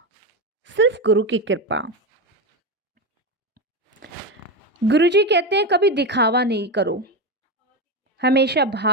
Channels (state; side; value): normal; both; correlation 0.15